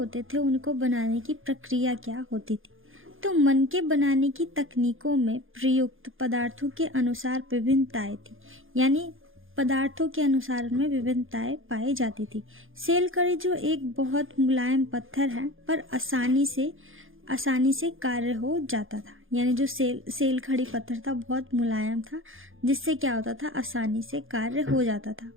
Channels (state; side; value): late; left; 0.59 ms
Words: थे उनको बनाने की प्रक्रिया क्या होती थी। तो मनके बनाने की तकनीकों में प्रयुक्त पदार्थों के अनुसार विभिन्नताएं थी, यानी पदार्थों के अनुसार में विभिन्नताएं पाई जाती थी। सेलकरी जो एक बहुत मुलायम पत्थर है पर आसानी से कार्य हो जाता था, यानी जो सेलखड़ी पत्थर था बहुत मुलायम था जिससे क्या होता था, आसानी से कार्य हो जाता था।